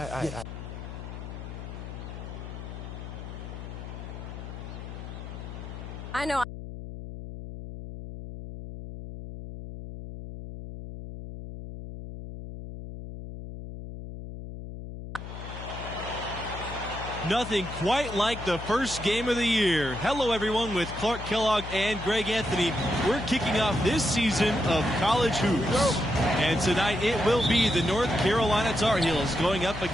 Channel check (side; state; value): left; noise; hum, 10 dB below the sound